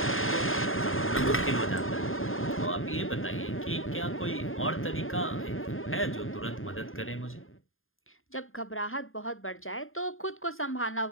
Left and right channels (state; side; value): late; right; 0.60 ms